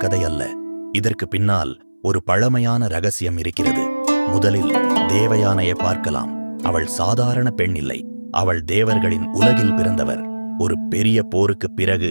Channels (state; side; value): inverted; both; correlation -1.00